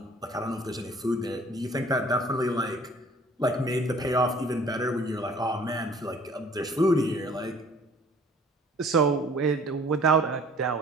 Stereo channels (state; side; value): normal; both; correlation 0.53